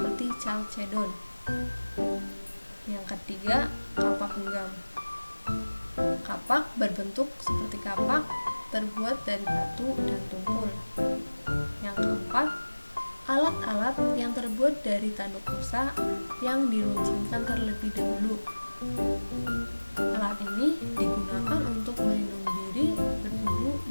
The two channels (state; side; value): inverted; both; correlation -1.00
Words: chalcedon. Yang ketiga, kapak genggam. Kapak berbentuk seperti kapak terbuat dari batu dan tumpul. Yang keempat, alat-alat yang terbuat dari tanduk rusa yang diruncingkan terlebih dahulu. Alat ini digunakan untuk melindungi diri, berburu,